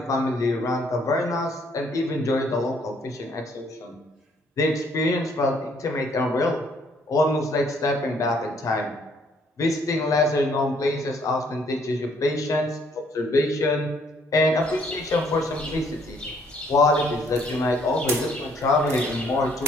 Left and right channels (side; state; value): both; normal; correlation 0.65